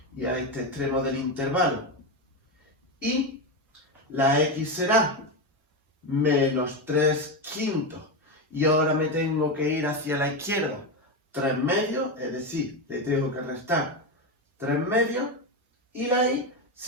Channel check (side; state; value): both; normal; correlation 0.12